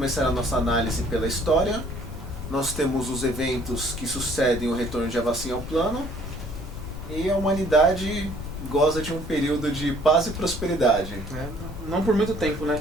a nossa análise pela história. Nós temos os eventos que sucedem o retorno de Avacyn ao plano. E a humanidade goza de um período de paz e prosperidade. Não por muito tempo, né?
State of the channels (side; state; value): left; noise; rumble, 9 dB below the sound